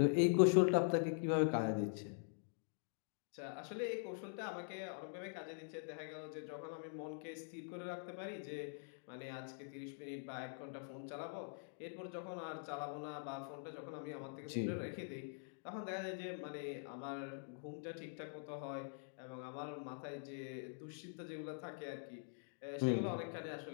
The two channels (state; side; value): silent; right; digital silence